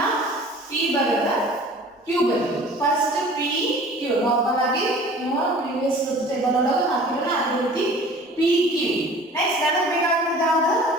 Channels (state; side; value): normal; both; correlation 0.46